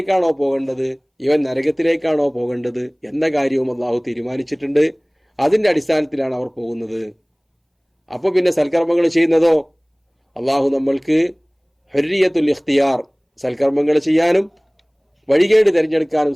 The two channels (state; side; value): identical; both; correlation 1.00